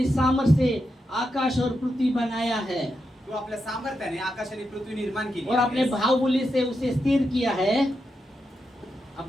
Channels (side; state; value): both; normal; correlation 0.86